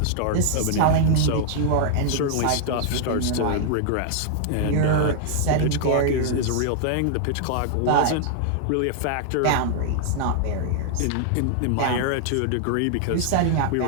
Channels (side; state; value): both; different; correlation -0.01